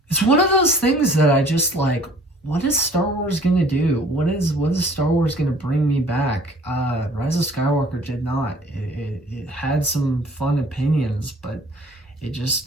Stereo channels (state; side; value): normal; both; correlation 0.53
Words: one of those things that I just like. What is Star Wars gonna do? What is Star Wars gonna bring me back? Rise of Skywalker did not. It had some fun opinions, but